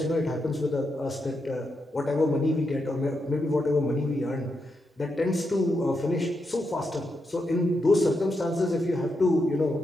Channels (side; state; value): both; normal; correlation 0.84